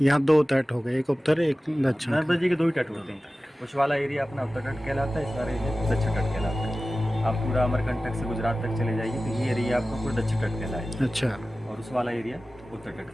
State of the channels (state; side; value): normal; both; correlation 0.96